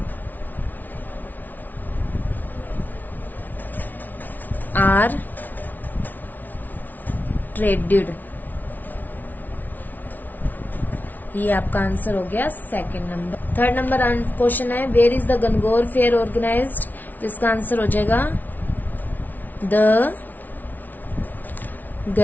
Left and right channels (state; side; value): late; right; 0.082 ms